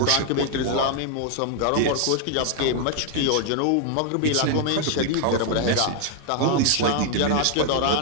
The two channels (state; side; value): different; both; correlation 0.00